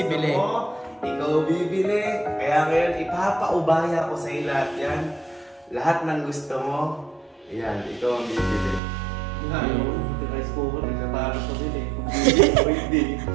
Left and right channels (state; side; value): drops out; left; at 8.8 s